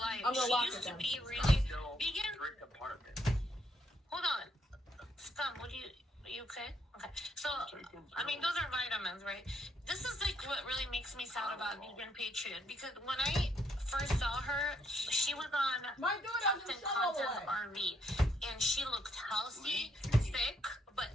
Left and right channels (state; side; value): normal; both; correlation 0.73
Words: She used to be really Vegan. Hold on, Scum. Are you okay? Okay. So, I mean, those are vitamins, right? This is like what really makes me sad about Vegan Patriot, because when I first saw her, she was on Captain Content's RV, and she looked healthy, thick, but